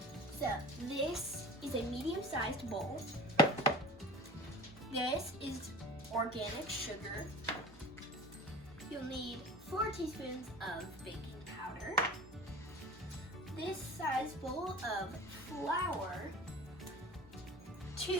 So this is a medium-sized bowl. This is organic sugar. You'll need 4 teaspoons of baking powder. This size bowl of flour,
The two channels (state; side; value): normal; both; correlation 0.38